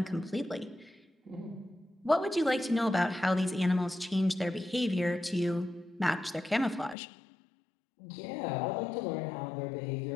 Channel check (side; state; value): right; drops out; at 7.0 s